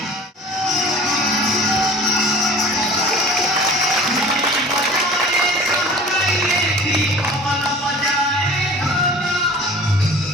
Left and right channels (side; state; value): both; normal; correlation 0.44